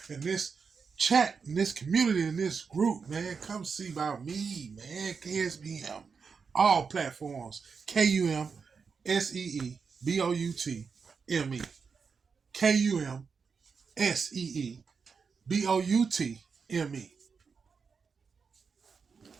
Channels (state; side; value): quieter; left; 5.5 dB